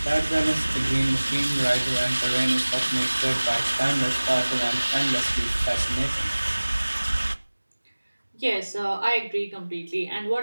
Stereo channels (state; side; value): inverted; both; correlation -1.00